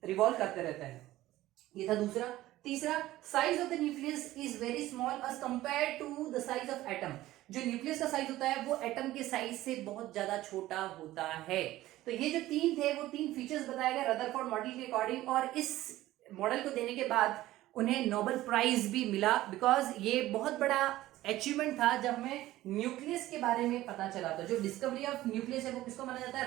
रिवॉल्व करते रहते हैं। ये था दूसरा। तीसरा, size of the nucleus is very small as compared to the size of atom. जो न्यूक्लियस का साइज होता है वो एटम के साइज से बहुत ज्यादा छोटा होता है। तो ये जो तीन थे वो तीन फीचर्स बताए गए रदरफोर्ड मॉडल के अकॉर्डिंग, और इस मॉडल को देने के बाद उन्हें नोबेल प्राइज भी मिला, बिकॉज ये बहुत बड़ा अचीवमेंट था जब हमें न्यूक्लियस के बारे में पता चला। तो जो डिस्कवरी ऑफ न्यूक्लियस है वो किसको माना जाता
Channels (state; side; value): quieter; left; 15.8 dB